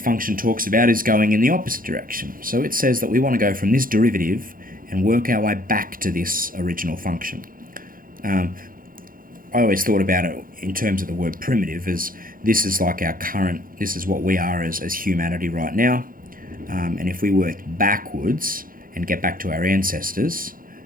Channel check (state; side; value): late; left; 0.41 ms